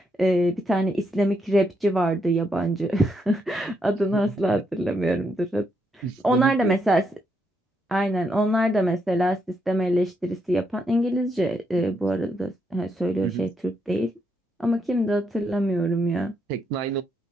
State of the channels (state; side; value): normal; both; correlation 0.78